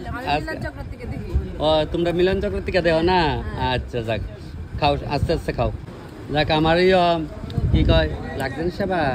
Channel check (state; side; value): identical; both; correlation 1.00